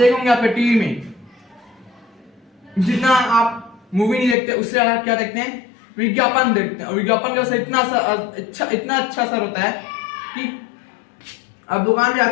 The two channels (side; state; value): right; drops out; at 4.4 s